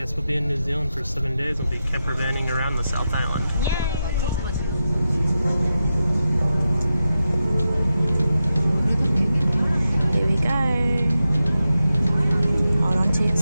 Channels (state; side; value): inverted; both; correlation -0.89